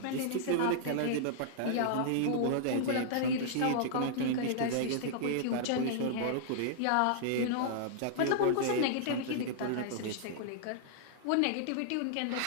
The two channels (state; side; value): different; both; correlation -0.01